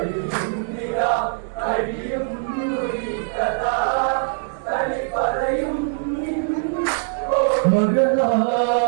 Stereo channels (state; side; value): silent; left; digital silence